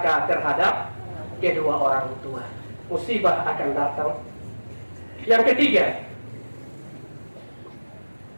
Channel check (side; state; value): both; inverted; correlation -1.00